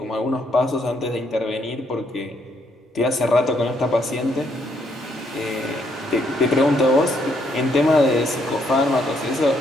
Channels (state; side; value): normal; both; correlation 0.72